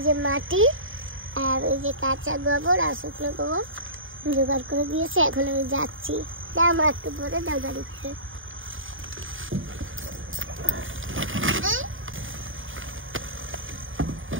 যে মাটি আর ওই যে কাঁচা গোবর আর শুকনো গোবর জোগাড় করে দিয়েছে। এখন আমি যাচ্ছি। দাও মা, একটু পরে দাও গাড়িতে।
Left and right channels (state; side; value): late; left; 0.58 ms